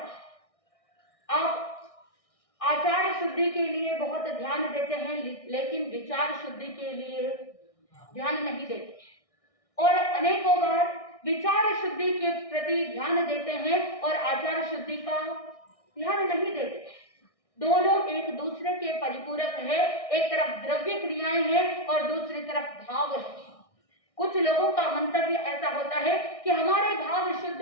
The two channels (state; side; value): late; right; 1.6 ms